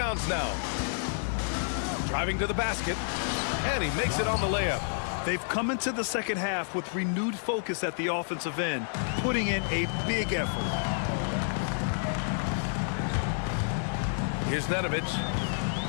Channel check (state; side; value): silent; right; digital silence